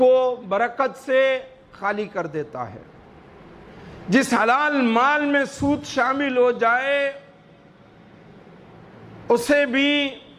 برکت سے خالی کر دیتا ہے۔ جس حلال مال میں سود شامل ہو جائے اسے بھی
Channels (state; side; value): identical; both; correlation 1.00